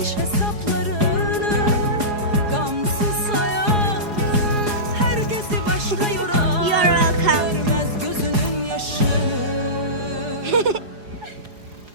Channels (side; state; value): left; late; 4.8 ms